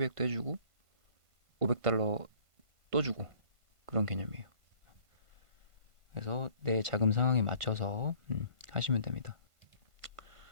해주고 500달러 또 주고 그런 개념이에요. 그래서 내 자금 상황에 맞춰서 하시면 됩니다.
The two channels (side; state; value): left; late; 1.5 ms